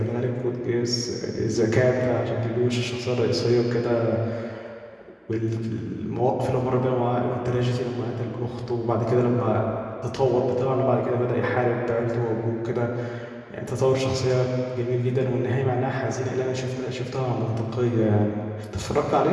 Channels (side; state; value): both; identical; correlation 1.00